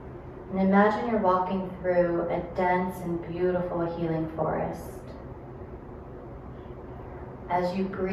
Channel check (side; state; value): both; identical; correlation 1.00